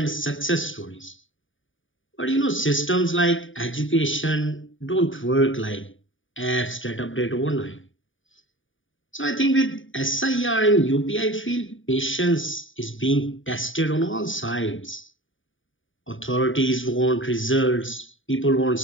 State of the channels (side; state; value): right; late; 0.57 ms